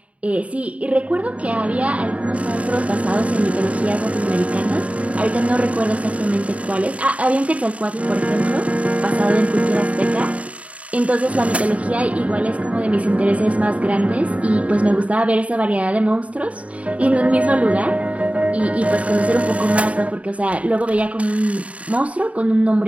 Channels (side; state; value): left; late; 0.066 ms